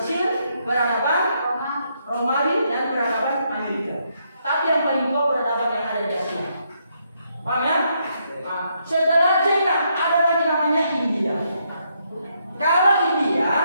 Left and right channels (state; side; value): inverted; both; correlation -0.76